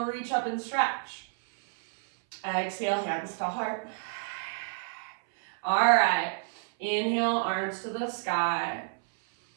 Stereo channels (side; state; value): left; silent; 58 dB below the other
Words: reach up and stretch. Exhale, hands to heart. All right, inhale, arms to the sky.